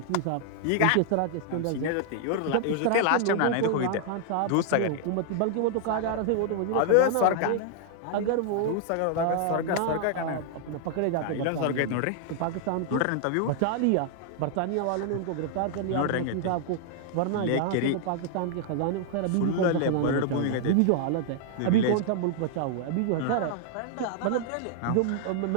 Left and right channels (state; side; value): different; both; correlation 0.00